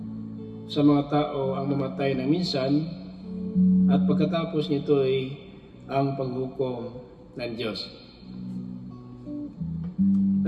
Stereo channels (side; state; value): both; identical; correlation 1.00